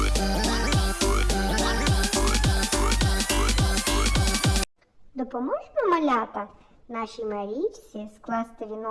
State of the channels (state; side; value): identical; both; correlation 1.00